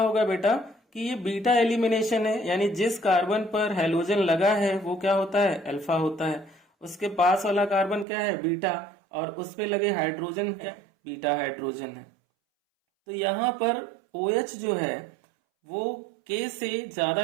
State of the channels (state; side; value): drops out; left; at 8.1 s